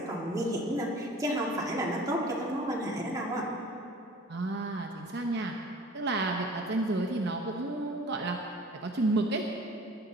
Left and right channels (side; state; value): both; normal; correlation 0.46